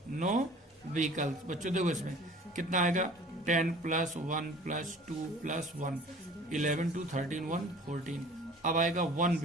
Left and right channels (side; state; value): both; normal; correlation 0.47